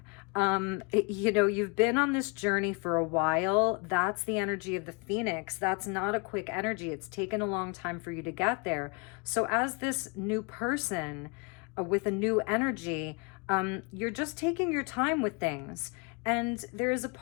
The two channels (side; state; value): right; quieter; 31.5 dB